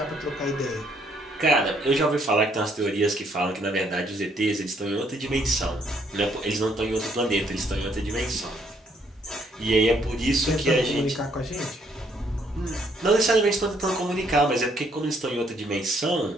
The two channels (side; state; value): both; normal; correlation 0.68